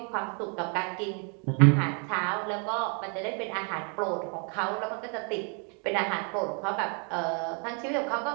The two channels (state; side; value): quieter; left; 38.4 dB